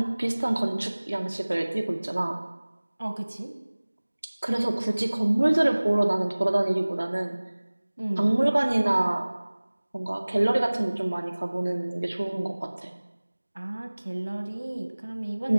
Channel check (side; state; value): both; inverted; correlation -1.00